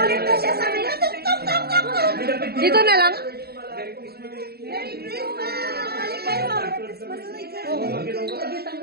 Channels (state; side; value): late; left; 0.46 ms